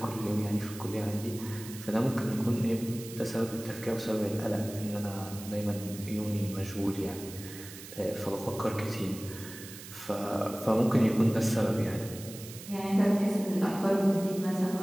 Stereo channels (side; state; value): right; noise; hiss, 14 dB below the sound